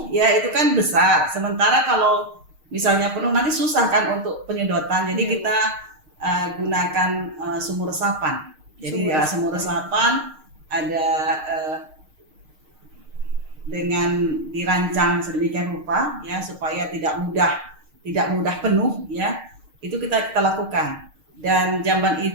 ya itu kan besar. Sementara kalau misalnya penuh nanti susah kan untuk penyedotan, jadi kita gunakan sumur resapan. Jadi sumur resapan ada dengan dirancang sedemikian rupa ya supaya tidak mudah penuh ya, itu kita lakukan, dan jamban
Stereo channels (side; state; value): left; late; 6.5 ms